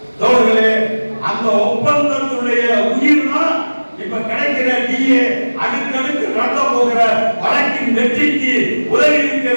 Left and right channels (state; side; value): inverted; both; correlation -1.00